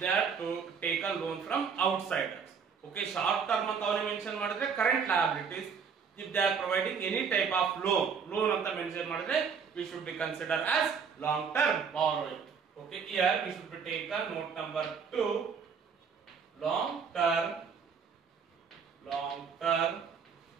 they are to take a loan from outsiders. Okay, short-term ಅಂತ ಅವನು mention ಮಾಡಿದ್ರೆ current liabilities. If they are providing any type of loan ಅಂತ mention ಮಾಡಿದ್ರೆ we should be considered as long-term borrowing. Okay, here we should be taken note number 2 long-term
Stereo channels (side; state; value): left; quieter; 6.2 dB